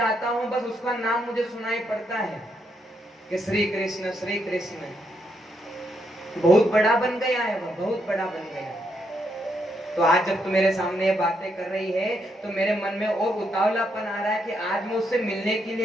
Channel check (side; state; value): both; normal; correlation 0.78